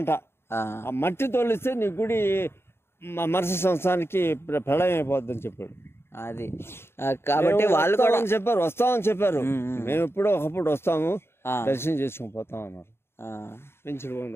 ఆ మట్టి తోలిస్తే నీ గుడి మరుసటి సంవత్సరానికి ప్రళయం అయిపోద్దని చెప్పాడు. అది కాబట్టి వాళ్ళు కూడా చెప్పారు, వస్తామని చెప్పారు. మేము ఎప్పుడో ఒకప్పుడు వస్తాము, దర్శనం చేసుకుని పోతాం అన్నారు. పెంచులు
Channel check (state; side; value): late; right; 0.12 ms